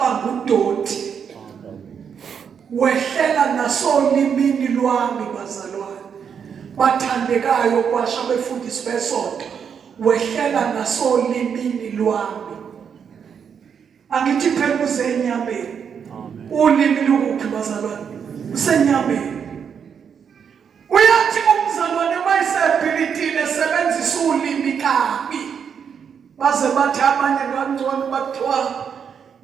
udoti. Wehlela nasolimini lwami bazalwane bathandekayo kwasha befundisi besonto, wehlela nasolimini lwami. Angithi phela uzenyameni. Ulimi lukuphi bazalwane? Usenyameni. Uyathi umzalwane mayisebhilidile sebenzisa ulimi kabi, baze bathi abanye kancane bathiwa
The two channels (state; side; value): quieter; left; 7.2 dB